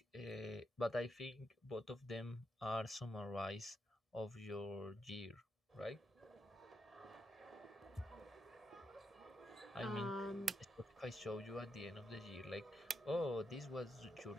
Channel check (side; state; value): both; normal; correlation 0.83